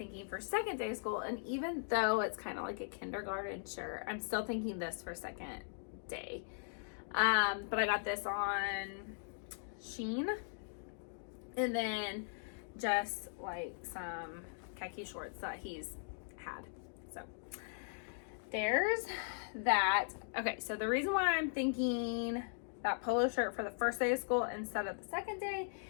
for second day of school, and even though it's kind of like a kindergarten shirt, I'm still thinking this for second day. But I got this on Shein, and then just like some khaki shorts that he's had. So there's that. Okay, so the reason why I'm thinking that polo shirt for the first day of school instead of the second day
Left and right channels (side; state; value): right; silent; digital silence